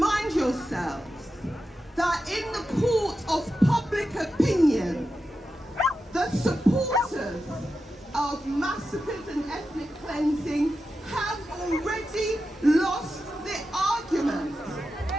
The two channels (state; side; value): normal; both; correlation 0.90